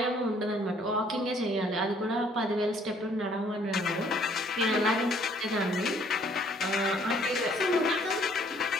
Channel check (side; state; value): both; normal; correlation 0.61